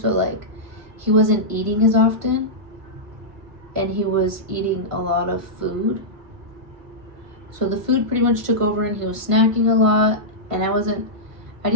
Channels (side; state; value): left; late; 1.5 ms